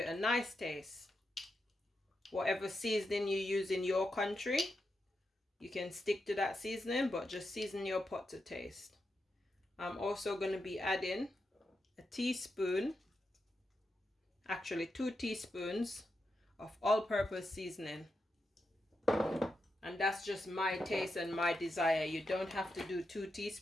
a nice taste. Whatever seasoning you use in your country, you can stick to that seasoning, but just season your pot to taste. I'm also going to be adding a teaspoon, actually 2 teaspoons of all-purpose seasoning. And that's just my taste and my desire. You don't have to do 2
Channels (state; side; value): normal; both; correlation 0.86